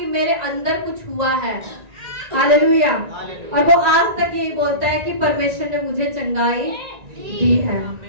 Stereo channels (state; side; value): late; left; 1.9 ms